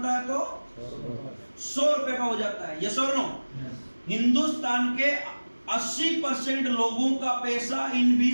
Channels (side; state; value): both; inverted; correlation -1.00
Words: है तो 100 रुपए का हो जाता है। ये सो हिंदुस्तान के 80% लोगों का पैसा इन